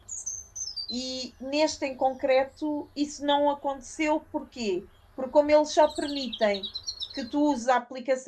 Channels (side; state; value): both; identical; correlation 1.00